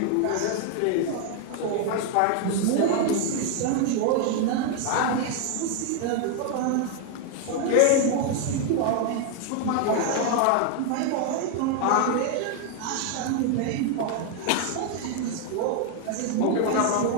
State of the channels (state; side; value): different; both; correlation 0.01